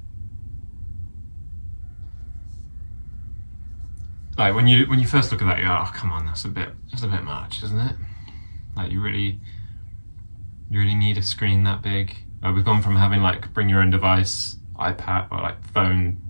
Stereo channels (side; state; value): both; inverted; correlation -1.00